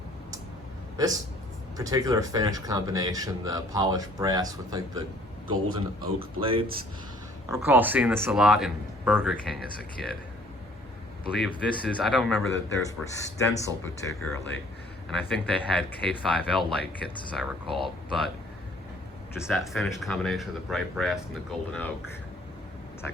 This particular finish combination, the polished brass with like the golden oak blades. I recall seeing this a lot in Burger King as a kid. I believe this is, I don't remember that theirs were Stencil particularly, and I think they had K5L light kits as I recall, but just that finish combination of the bright brass and the golden oak, it's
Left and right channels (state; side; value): normal; both; correlation 0.57